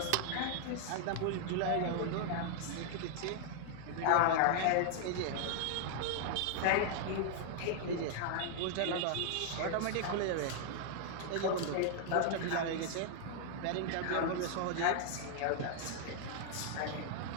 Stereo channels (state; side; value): different; both; correlation 0.00